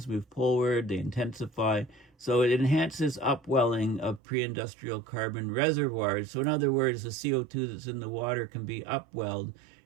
move poleward, they intensify. So it enhances upwelling of pre-industrial carbon reservoirs. So in other words, the CO2 that's in the water can be upwelled,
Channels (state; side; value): drops out; left; at 4.2 s